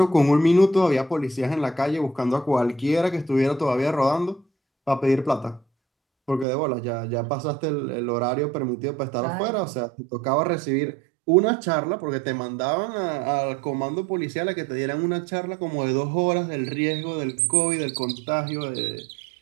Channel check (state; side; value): drops out; left; at 6.5 s